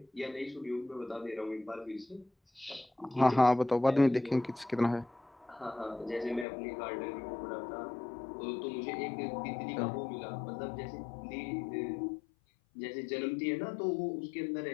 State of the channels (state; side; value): drops out; right; at 6.5 s